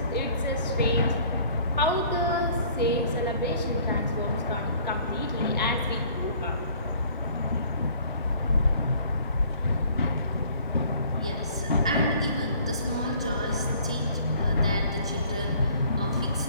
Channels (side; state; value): both; inverted; correlation -0.55